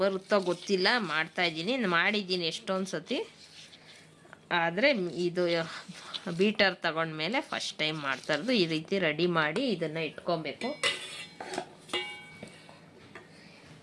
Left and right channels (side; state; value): both; identical; correlation 1.00